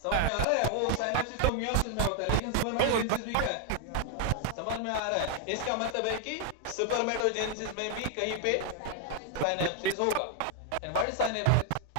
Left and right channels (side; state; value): both; different; correlation 0.00